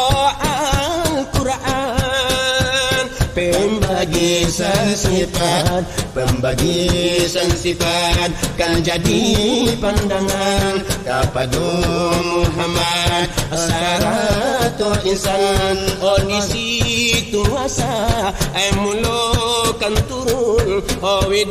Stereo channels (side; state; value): both; identical; correlation 1.00